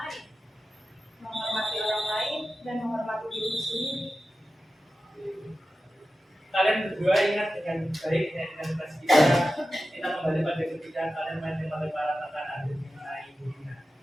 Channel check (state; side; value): normal; both; correlation 0.93